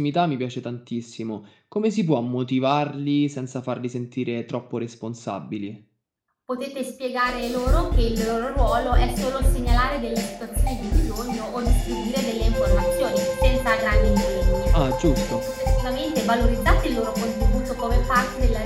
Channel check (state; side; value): identical; both; correlation 1.00